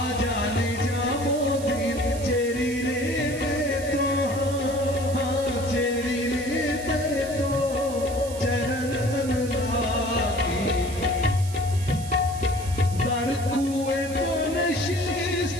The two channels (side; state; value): right; noise; hiss, 14 dB below the sound